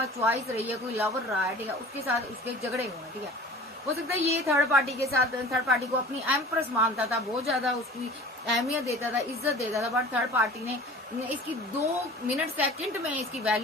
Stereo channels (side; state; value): both; normal; correlation 0.42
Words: चॉइस रही है, कोई लवर रहा है, ठीक है, उसके साथ उसके झगड़े हुए हैं, ठीक है। हो सकता है ये थर्ड पार्टी के साथ, थर्ड पार्टी को अपनी एम्प्रेस मानता था, बहुत ज्यादा उसकी अहमियत देता था, इज्जत देता था। बट थर्ड पार्टी ने इसकी 2 मिनट सेकंड में इसकी